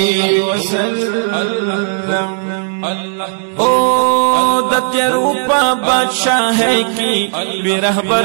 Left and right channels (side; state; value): left; silent; digital silence